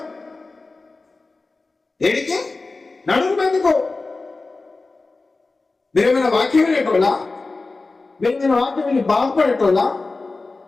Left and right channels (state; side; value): quieter; right; 3.6 dB